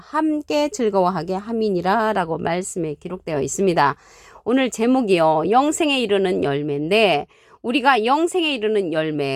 즐거워하게 함이니라 라고 말씀에 기록되어 있습니다. 오늘 제목이요. 영생에 이르는 열매인데 우리가 영생에 이르는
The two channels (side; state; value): both; identical; correlation 1.00